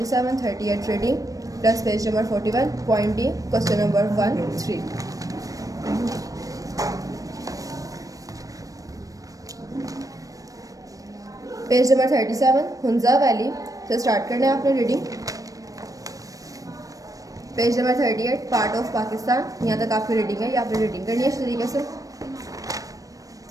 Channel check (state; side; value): late; left; 0.16 ms